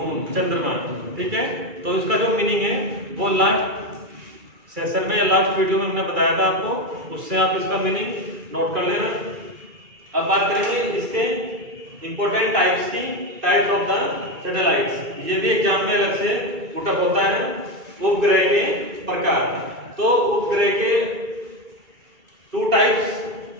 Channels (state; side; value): late; left; 2.3 ms